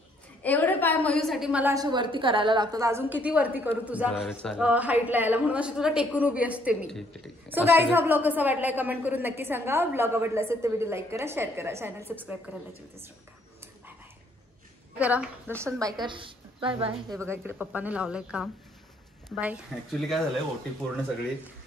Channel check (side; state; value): both; normal; correlation 0.67